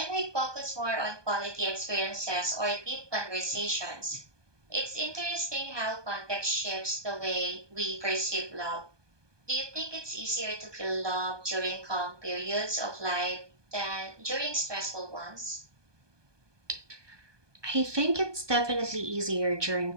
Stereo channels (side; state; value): left; late; 1.2 ms